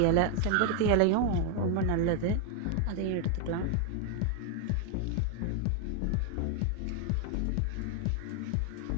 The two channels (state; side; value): different; both; correlation 0.00